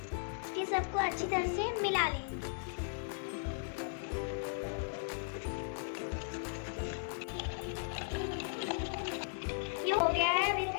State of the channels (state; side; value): silent; right; digital silence